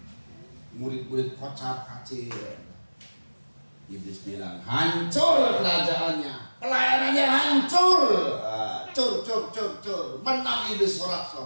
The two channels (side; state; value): both; inverted; correlation -1.00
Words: Murid-murid kocar-kacir. Iblis bilang, hancur kerajaannya, pelayanannya hancur. Cur. Menang iblis